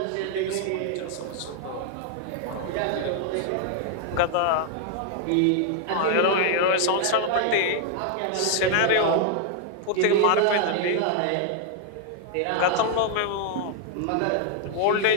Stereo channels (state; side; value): different; both; correlation 0.00